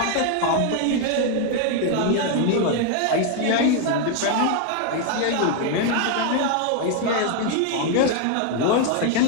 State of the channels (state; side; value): different; both; correlation 0.01